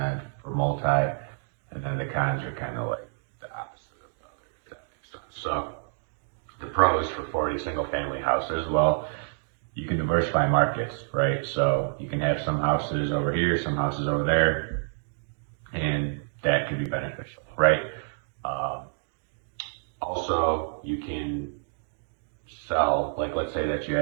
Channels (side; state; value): left; silent; digital silence